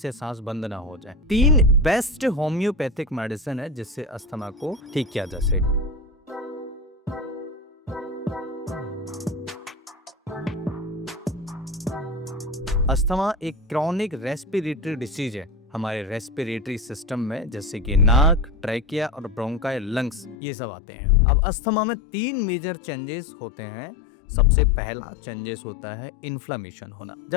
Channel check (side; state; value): right; drops out; at 20.4 s